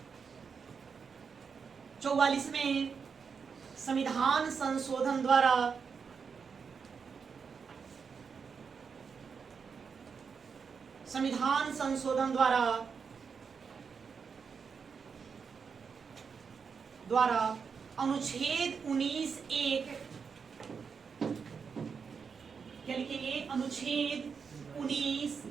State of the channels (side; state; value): left; quieter; 5.9 dB